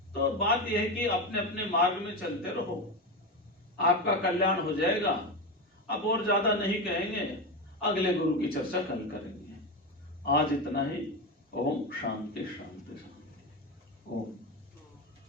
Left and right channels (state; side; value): normal; both; correlation 0.17